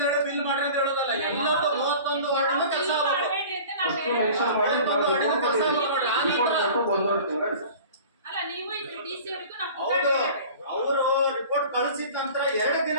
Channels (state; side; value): inverted; both; correlation -0.41